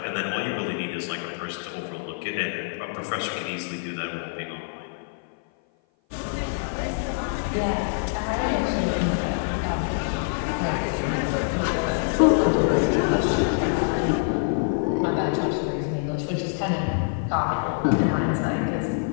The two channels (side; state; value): right; silent; 56 dB below the other